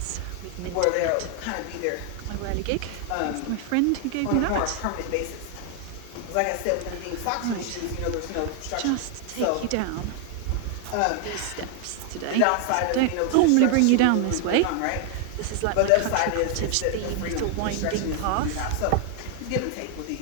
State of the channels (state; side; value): different; both; correlation 0.00